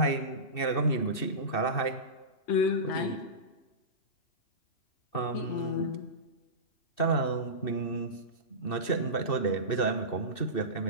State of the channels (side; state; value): right; late; 2.7 ms